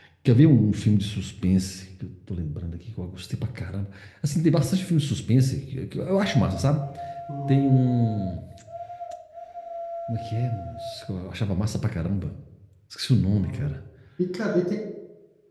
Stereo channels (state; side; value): identical; both; correlation 1.00